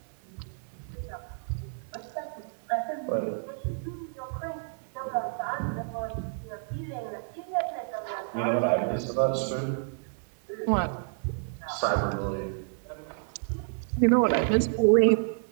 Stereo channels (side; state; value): left; silent; digital silence